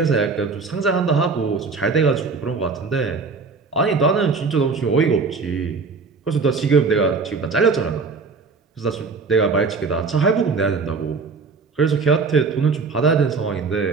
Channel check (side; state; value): left; quieter; 4.5 dB